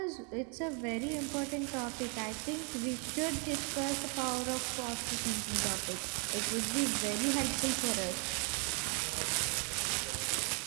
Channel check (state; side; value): quieter; left; 36.6 dB